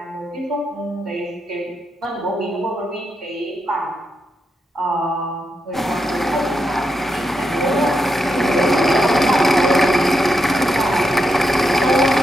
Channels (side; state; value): both; normal; correlation 0.84